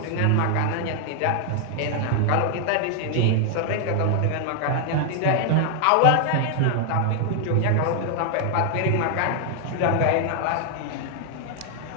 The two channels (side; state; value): both; different; correlation 0.00